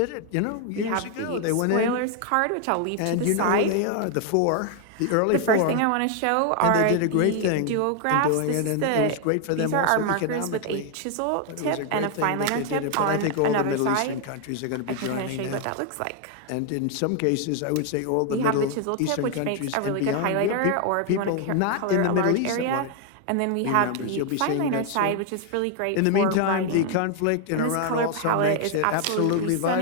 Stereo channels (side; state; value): both; different; correlation 0.00